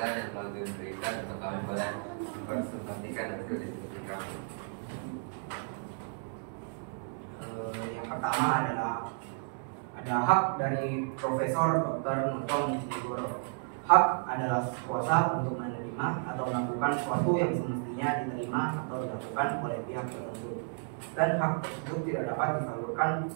yang telah diberikan untuk kami boleh mempresentasikan hasil diskusi kami. Yang pertama adalah ada hak dari Profesor Dr. Nurtanigoro. Hak adalah kuasa untuk menerima atau melakukan sesuatu yang semestinya diterima atau dilakukan oleh pihak tertentu, dan hak tersebut tidak dapat disalurkan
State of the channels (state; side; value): silent; left; 56 dB below the other